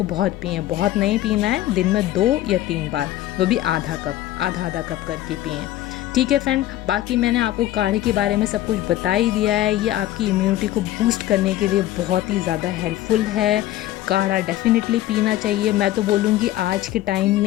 बहुत पिएँ, बहुत नहीं पीना है, दिन में 2 या 3 बार, वो भी आधा आधा कप करके पिएँ। ठीक है फ्रेंड, बाकी मैंने आपको काढ़े के बारे में सब कुछ बता ही दिया है। ये आपकी इम्यूनिटी को बूस्ट करने के लिए बहुत ही ज़्यादा हेल्पफुल है। काढ़ा डेफिनेटली पीना चाहिए। मैं तो बोलूँगी आज के टाइम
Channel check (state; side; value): quieter; right; 14.4 dB